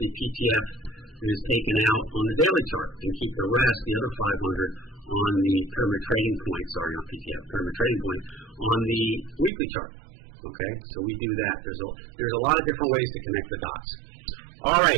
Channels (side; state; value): left; drops out; at 9.5 s